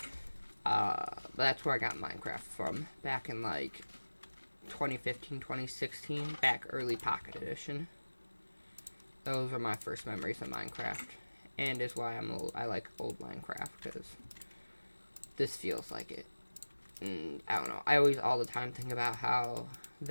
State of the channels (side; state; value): both; inverted; correlation -1.00